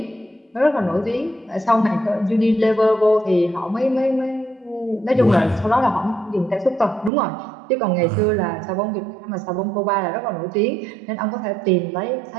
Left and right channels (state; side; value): drops out; left; at 7.1 s